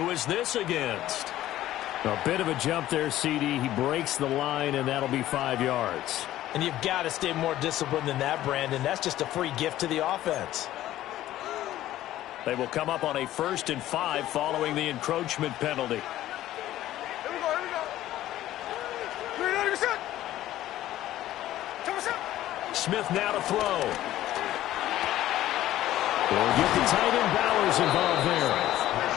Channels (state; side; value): quieter; right; 14.0 dB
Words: is this against? A bit of a jump there, CD. He breaks the line, and that'll be 5 yards. And you've got to stay more disciplined than that, Brandon. That's just a free gift to the offense. They will come up on a 1st and 5 following the encroachment penalty. Smith now to throw. We'll get the tight end Bowers involved there.